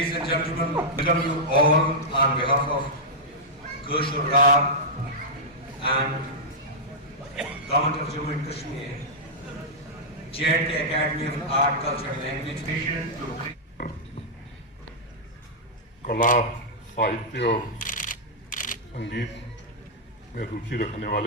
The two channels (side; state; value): both; normal; correlation -0.09